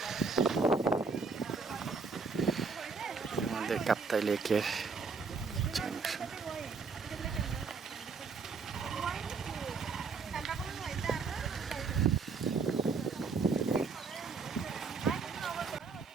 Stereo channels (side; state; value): left; quieter; 4.9 dB